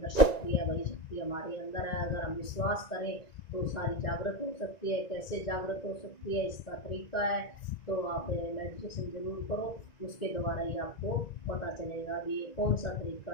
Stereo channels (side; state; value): right; late; 1.9 ms